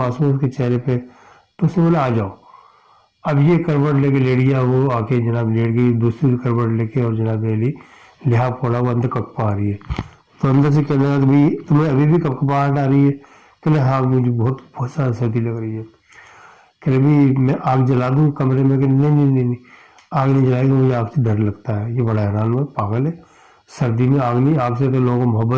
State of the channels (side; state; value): both; identical; correlation 1.00